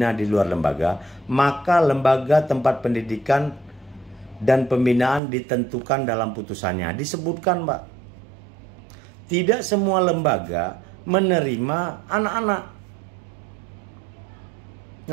di luar lembaga, maka lembaga tempat pendidikan dan pembinaan ditentukan dalam putusannya. Disebutkan, Pak, tidak semua lembaga menerima anak-anak.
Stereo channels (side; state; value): left; drops out; at 5.2 s